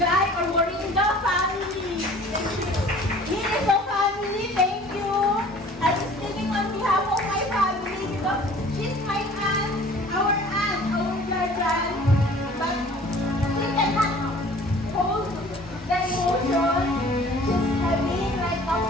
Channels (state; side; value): normal; both; correlation 0.49